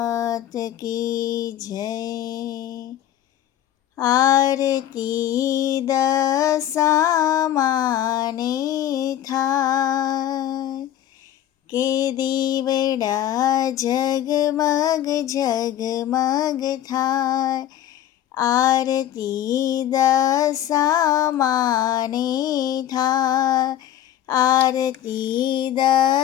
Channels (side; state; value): right; quieter; 11.6 dB